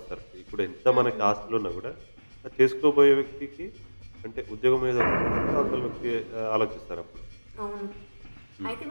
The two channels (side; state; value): both; inverted; correlation -1.00